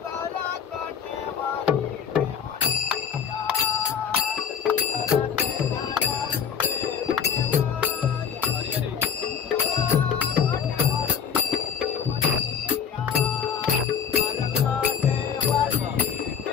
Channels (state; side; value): quieter; right; 7.3 dB